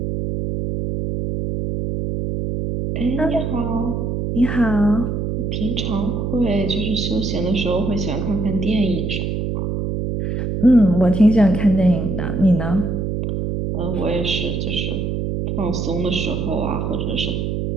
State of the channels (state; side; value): noise; right; hum, 2 dB below the sound